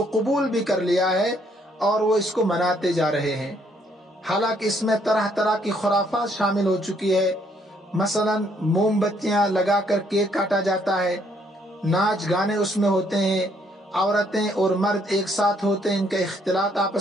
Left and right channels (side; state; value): both; normal; correlation 0.68